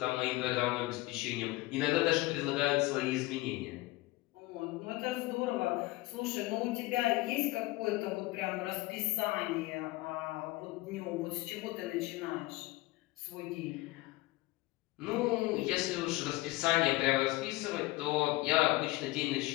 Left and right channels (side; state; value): right; quieter; 19.9 dB